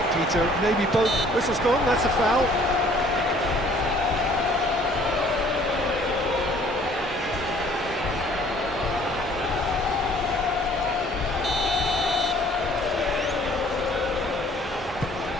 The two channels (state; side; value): normal; both; correlation 0.56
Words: Peter. Maybe both. Whistle's gone, that's a foul.